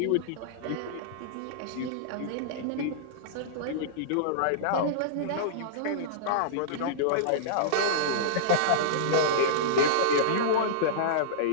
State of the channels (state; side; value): different; both; correlation -0.03